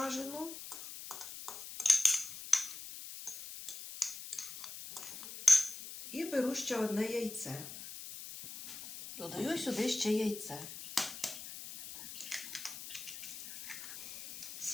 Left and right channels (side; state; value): left; noise; hiss, 10 dB below the sound